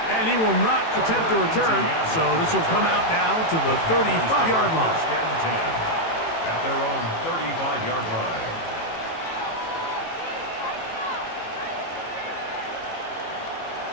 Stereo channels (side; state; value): right; late; 18 ms